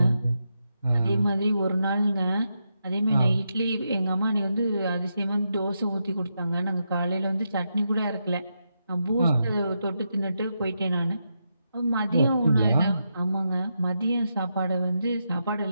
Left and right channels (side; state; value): both; inverted; correlation -0.84